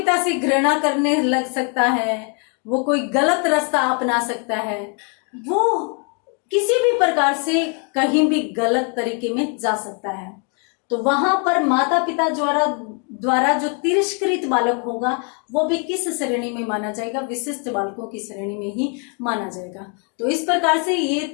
से घृणा करने लग सकता है, वो कोई गलत रास्ता अपना सकता है, वो किसी भी प्रकार से कहीं भी गलत तरीके में जा सकता है। तो वहां पर माता पिता द्वारा जो तिरस्कृत बालक होगा वो भी किस श्रेणी में माना जाएगा? विशिष्ट बालकों की श्रेणी में ही माना जाएगा। तो इस प्रकार से ये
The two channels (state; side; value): quieter; right; 38.5 dB